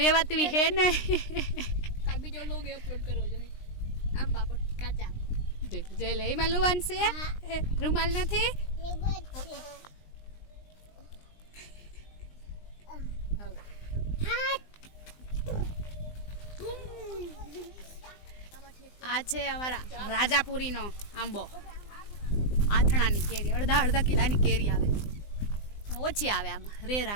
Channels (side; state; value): right; late; 20 ms